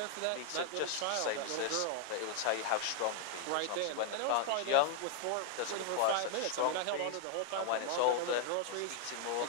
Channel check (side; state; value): both; different; correlation -0.01